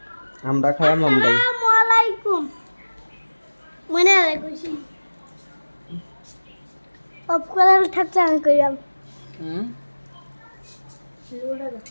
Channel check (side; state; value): both; inverted; correlation -1.00